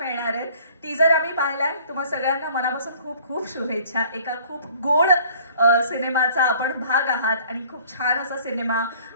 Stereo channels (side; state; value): both; inverted; correlation -0.53